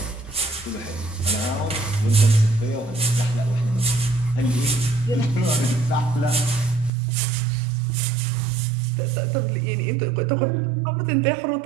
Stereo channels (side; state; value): left; drops out; at 6.9 s